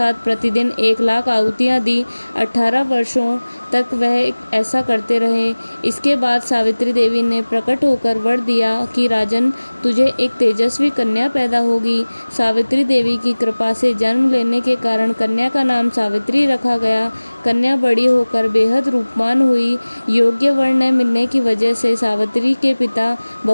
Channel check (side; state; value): both; inverted; correlation -1.00